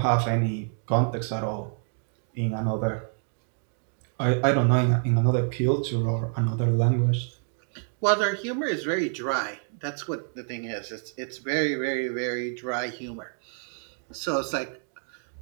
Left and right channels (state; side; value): silent; left; 60 dB below the other